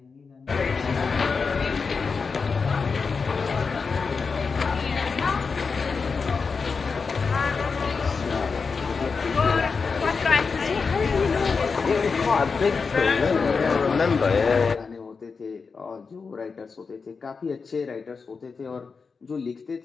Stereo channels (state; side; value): quieter; right; 5.0 dB